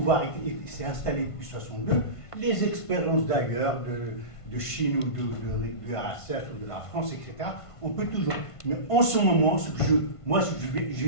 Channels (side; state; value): right; late; 1.5 ms